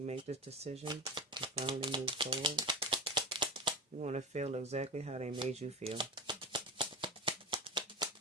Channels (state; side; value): normal; both; correlation 0.25